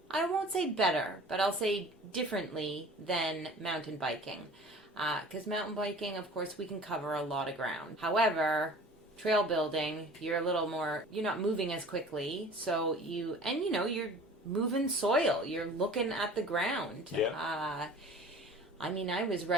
I won't say better, but I'll say differently than mountain biking. Because mountain biking, of course, we can cover a lot of ground. However, trail building, you're not moving as quickly. So you're moving soil. You're looking at the ground. Yeah. I was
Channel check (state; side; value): normal; both; correlation 0.44